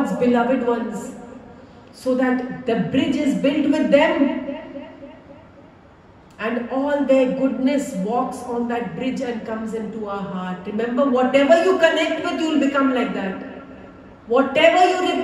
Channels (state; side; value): identical; both; correlation 1.00